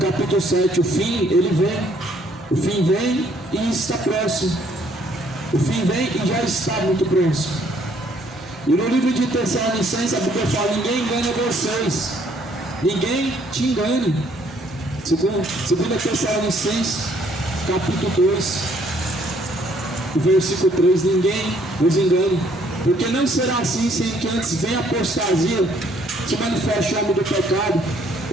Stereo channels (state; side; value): normal; both; correlation 0.65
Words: 7, o fim, ele vem, o fim vem e está próximo, o fim vem e já está muito próximo. E no livro de Tessalonicenses, a Bíblia fala: ninguém engana vocês, ninguém te engane. Segundo Tessalonicenses, capítulo 2, o versículo 3, ninguém os engane, porque não será assim sem que antes venha a apostasia, se manifeste o homem do pecado,